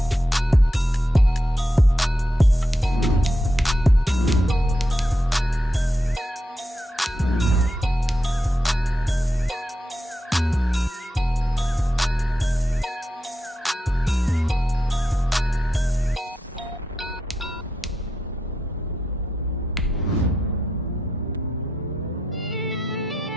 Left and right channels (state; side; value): normal; both; correlation 0.85